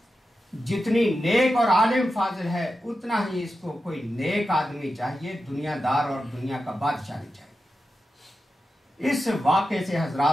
جتنی نیک اور عالم فاضل ہے اتنا ہی اس کو کوئی نیک آدمی چاہیے، دنیا دار اور دنیا کا بادشاہ نہیں چاہیے۔ اس واقعے سے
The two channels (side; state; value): both; normal; correlation 0.90